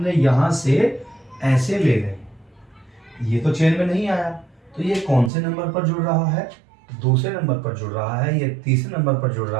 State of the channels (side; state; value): left; drops out; at 5.3 s